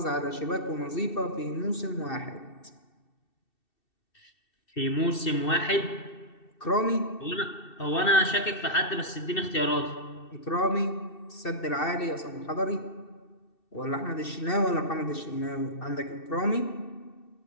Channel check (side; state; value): right; late; 2.7 ms